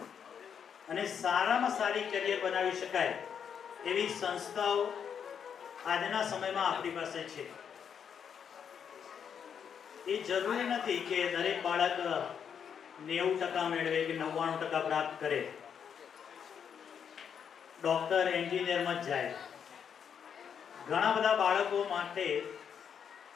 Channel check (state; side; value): quieter; right; 7.6 dB